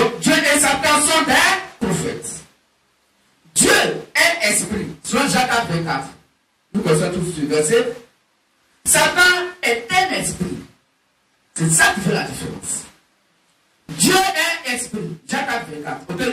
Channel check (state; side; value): identical; both; correlation 1.00